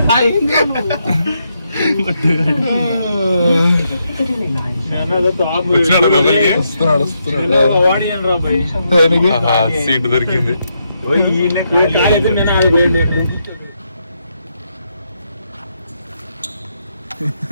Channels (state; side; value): inverted; both; correlation -0.80